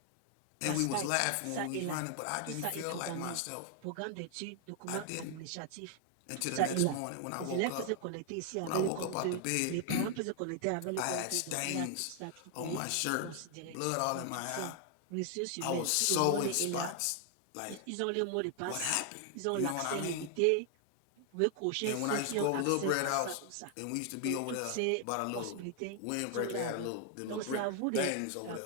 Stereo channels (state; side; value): different; both; correlation 0.00